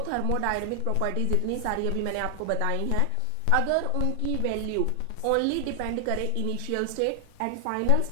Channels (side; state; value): both; different; correlation 0.00